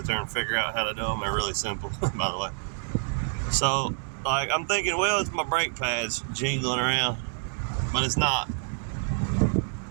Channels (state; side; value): silent; left; digital silence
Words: there and figure out how to do them. They're really simple, by the way. So, like, I'm thinking, well, it's my brake pads jingling around, but it's not.